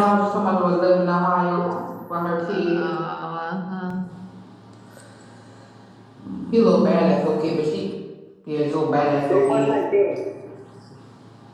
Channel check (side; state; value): both; identical; correlation 1.00